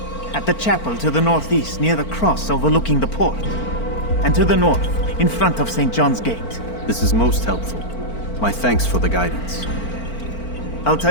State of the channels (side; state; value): right; late; 4.4 ms